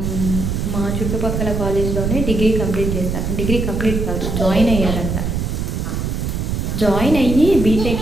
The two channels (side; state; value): right; noise; rumble, 2 dB below the sound